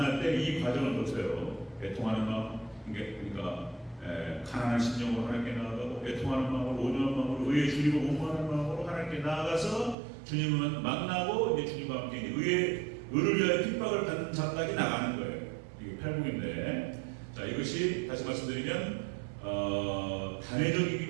때 이 과정을 거쳐요. 애통하는 마음, 그러니까 가난한 심령으로 하나님께 나아가고 애통하는 마음으로 온유한 마음으로 의에 줄이고 공부하는 마음으로 하나님께 나아가서 주님을 만나고 이제 주님과 함께 의를 위하여 핍박을 받는 자까지 나가는 거예요. 이게 팔복인데, 자 이것이 다시 말씀드리면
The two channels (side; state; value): left; drops out; at 10.0 s